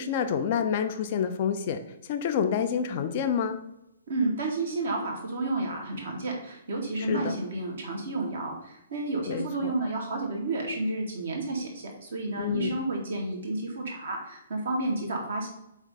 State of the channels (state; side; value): inverted; both; correlation -0.53